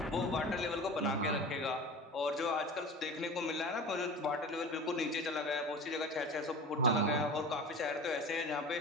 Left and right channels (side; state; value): both; normal; correlation 0.34